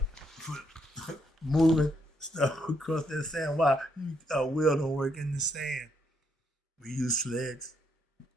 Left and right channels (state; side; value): normal; both; correlation 0.74